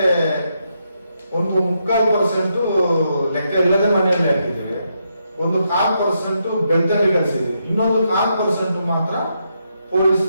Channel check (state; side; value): inverted; both; correlation -0.80